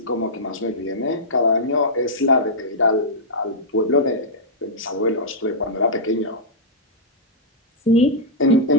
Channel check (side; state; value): both; normal; correlation -0.11